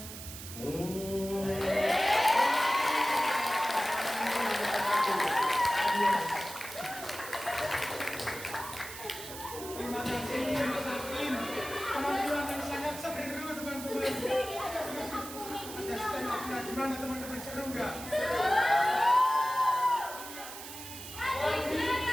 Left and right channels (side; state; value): right; noise; hiss, 11 dB below the sound